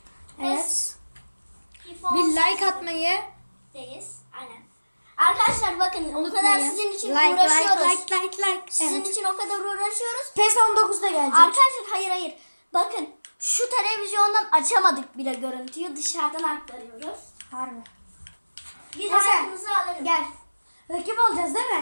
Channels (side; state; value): both; inverted; correlation -1.00